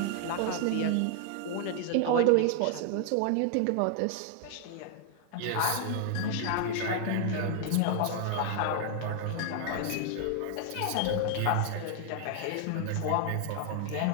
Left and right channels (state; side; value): different; both; correlation 0.00